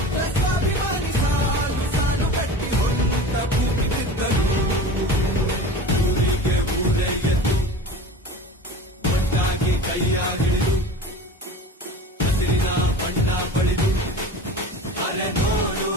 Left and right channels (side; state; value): both; normal; correlation 0.35